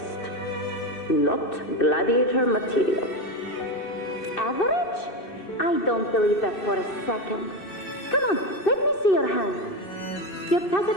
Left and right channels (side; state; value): right; late; 2.6 ms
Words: Not gladiator material. Average? I don't believe that for a second. Come on, let me see your hand. Your tacit